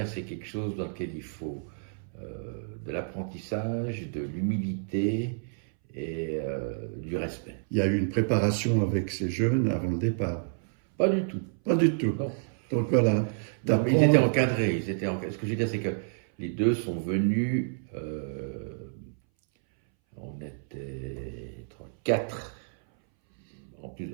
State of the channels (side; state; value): left; silent; 58 dB below the other